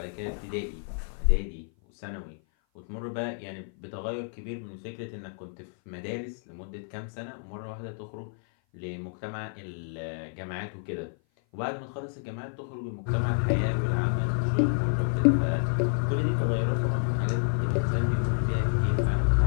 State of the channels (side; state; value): right; silent; 56 dB below the other